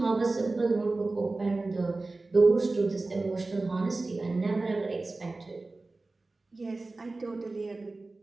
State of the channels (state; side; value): quieter; left; 3.3 dB